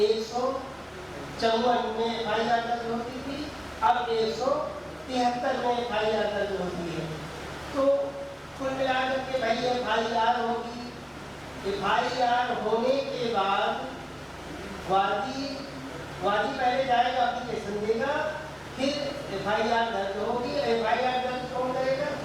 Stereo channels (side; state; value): both; identical; correlation 1.00